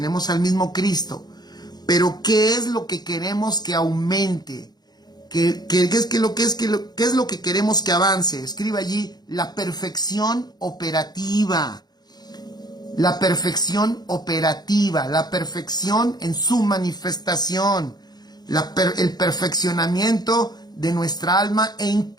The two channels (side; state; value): right; late; 0.20 ms